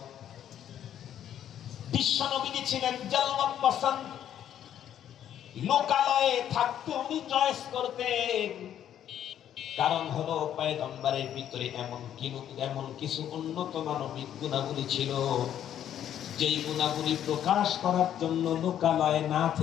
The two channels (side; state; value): right; quieter; 10.4 dB